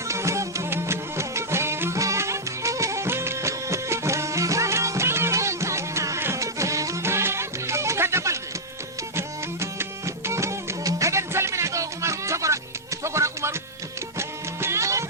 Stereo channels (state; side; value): normal; both; correlation -0.07